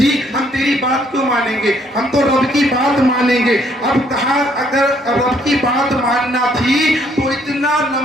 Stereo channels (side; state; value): both; normal; correlation 0.67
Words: ہم تیری بات کیوں مانیں گے, ہم تو رب کی بات مانیں گے. اب کہا اگر رب کی بات ماننا تھی تو اتنا